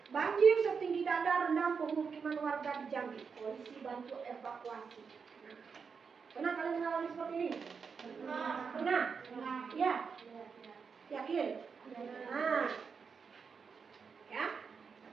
banjir setinggi dada rendam pemukiman warga di Jambi. Polisi bantu evakuasi. Nah, pernah kalian mengalami seperti ini? Pernah? Ya. Yakin? Nah, ya.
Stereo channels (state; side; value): quieter; left; 5.7 dB